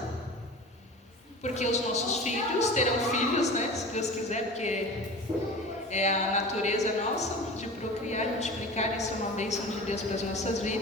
Porque os nossos filhos terão filhos, se Deus quiser, porque é a natureza nossa de procriar e multiplicar, isso é uma bênção de Deus para as nossas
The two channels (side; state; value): both; normal; correlation 0.35